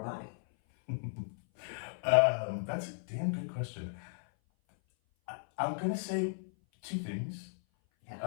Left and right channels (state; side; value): silent; right; 54 dB below the other